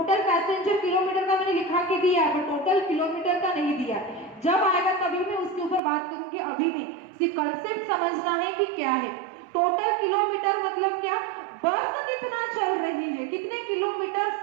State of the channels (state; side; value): drops out; left; at 5.8 s